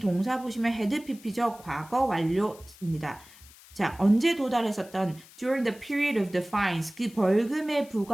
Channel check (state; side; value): noise; left; hiss, 22 dB below the sound